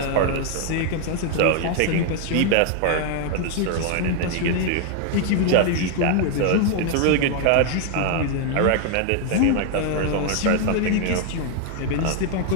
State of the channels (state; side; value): different; both; correlation 0.00